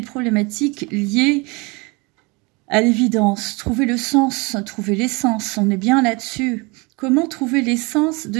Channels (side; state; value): left; quieter; 27.5 dB